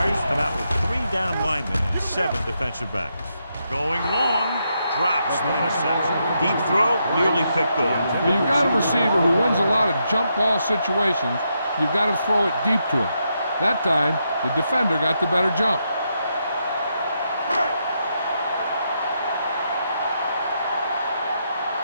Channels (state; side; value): inverted; both; correlation -0.81